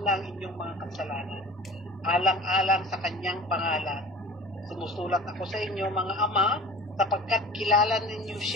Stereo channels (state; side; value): normal; both; correlation 0.41